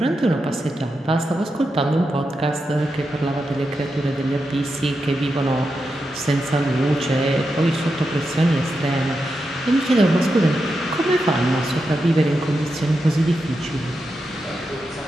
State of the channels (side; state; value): both; normal; correlation 0.87